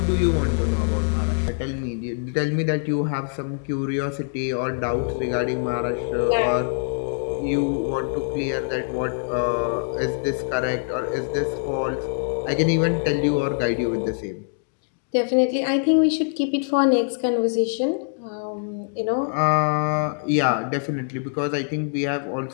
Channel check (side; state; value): right; silent; digital silence